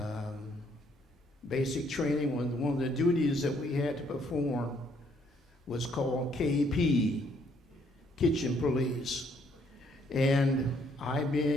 basic training, one of the duties that we had to perform was called KP, Kitchen Police. And I,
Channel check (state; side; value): normal; both; correlation 0.68